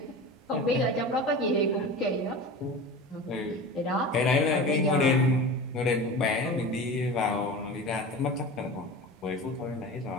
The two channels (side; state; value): both; normal; correlation 0.32